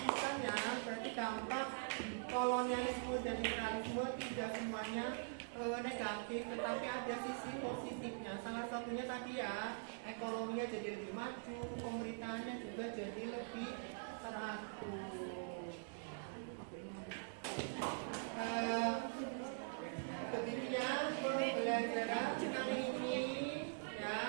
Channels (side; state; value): left; silent; digital silence